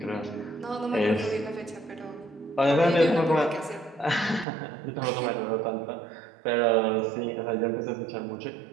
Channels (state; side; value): drops out; left; at 4.5 s